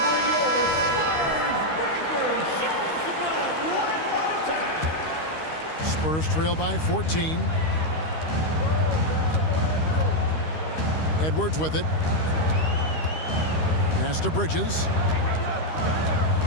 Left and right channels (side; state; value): right; late; 13 ms